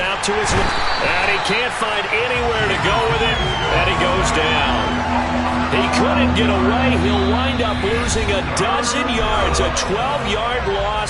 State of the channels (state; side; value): identical; both; correlation 1.00